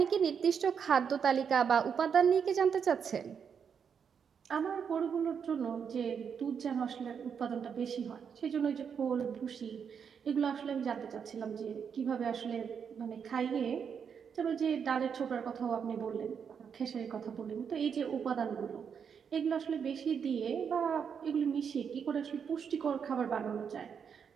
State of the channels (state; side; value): quieter; left; 7.0 dB